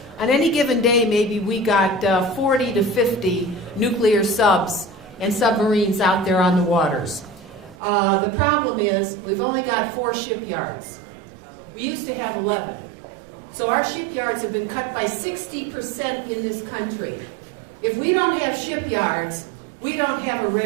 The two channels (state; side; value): drops out; left; at 7.8 s